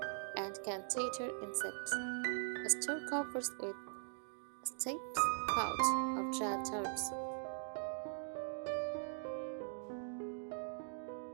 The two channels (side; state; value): left; silent; digital silence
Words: and can deter insects. Store covers with sticks, pouch, or dried herbs.